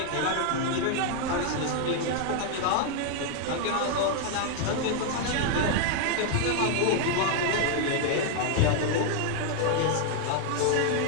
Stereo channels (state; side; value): different; both; correlation 0.00